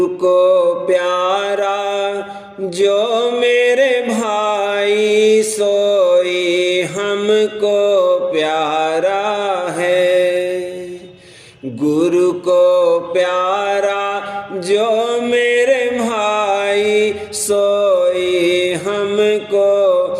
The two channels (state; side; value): identical; both; correlation 1.00